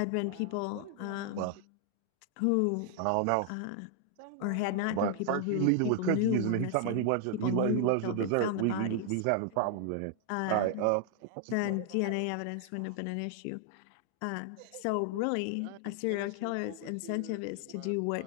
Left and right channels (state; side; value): different; both; correlation 0.00